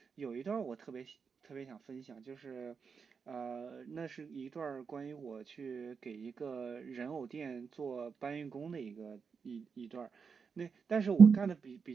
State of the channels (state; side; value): quieter; left; 5.7 dB